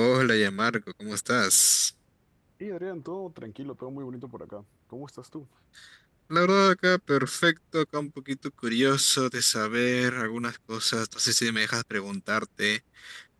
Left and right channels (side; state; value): both; identical; correlation 1.00